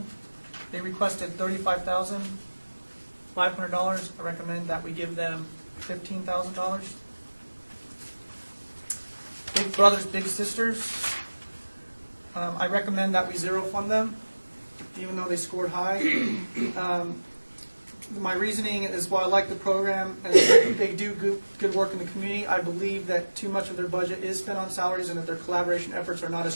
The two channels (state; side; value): inverted; both; correlation -1.00